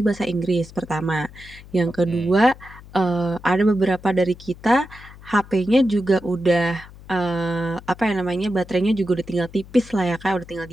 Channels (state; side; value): noise; left; hum, 19 dB below the sound